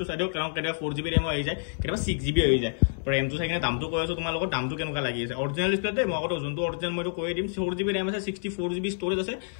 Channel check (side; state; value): right; silent; digital silence